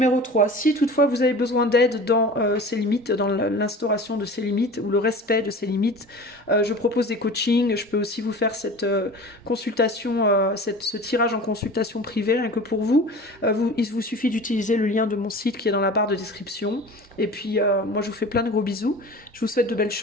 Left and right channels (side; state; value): both; normal; correlation 0.38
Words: 3. Si toutefois vous avez besoin d'aide dans ces limites, dans l'instauration de ces limites ou le respect de ces limites, je propose des coachings. Je peux aussi vous faire cette consultation, ce tirage en consultation privée, rien que pour vous. Il vous suffit d'utiliser le lien de mon site qui est dans la barre de description. Et puis, moi, je vous fais plein de gros bisous. Je vous souhaite de belles